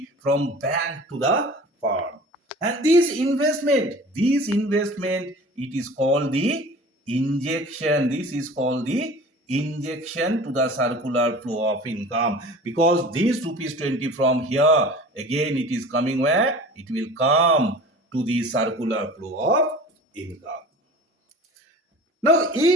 from bank to the farm. And this investment, it is called the injection. This is called the injection to the circular flow of income. Because this rupees 20 from here, again it is coming where? It will come to the circular flow of income. Now,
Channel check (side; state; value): both; normal; correlation 0.41